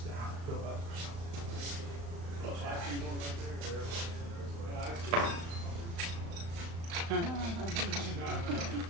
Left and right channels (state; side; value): late; left; 35 ms